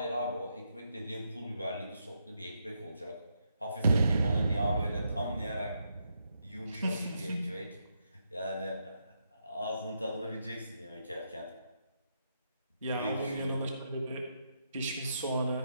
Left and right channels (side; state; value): both; inverted; correlation -0.81